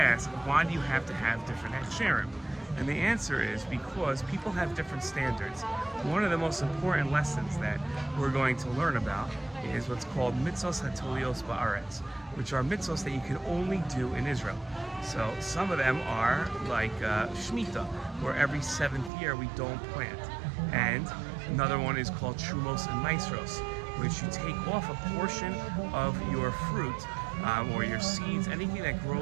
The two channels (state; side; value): drops out; left; at 19.1 s